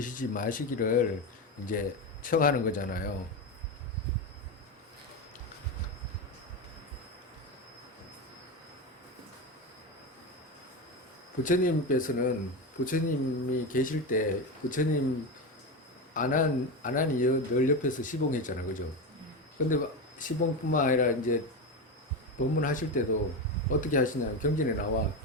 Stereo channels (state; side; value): normal; both; correlation 0.17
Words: 마시기를 이제 청하는 거잖아요. 부처님께서는 부처님이 계실 때 부처님 안한이 늘 옆에서 시봉했잖아요. 그죠? 근데 시봉뿐만 아니라 이제 법문하실 때도 어떻게 하시냐면 경전에 나와